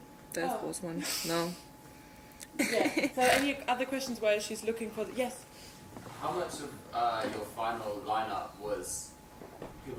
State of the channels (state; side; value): identical; both; correlation 1.00